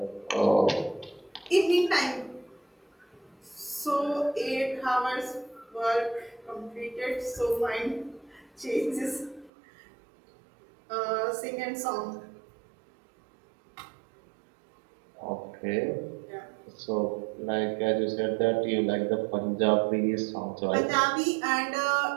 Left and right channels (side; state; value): left; drops out; at 9.5 s